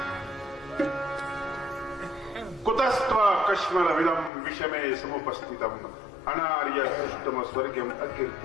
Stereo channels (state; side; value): drops out; right; at 4.3 s